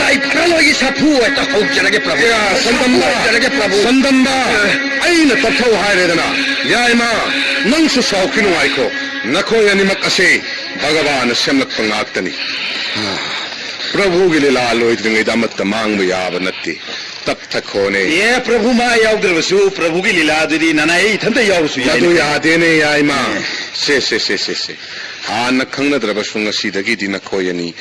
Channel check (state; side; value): identical; both; correlation 1.00